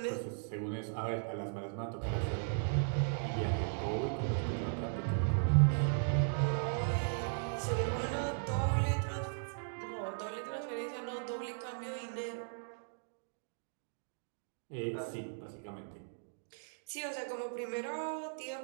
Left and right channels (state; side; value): silent; left; digital silence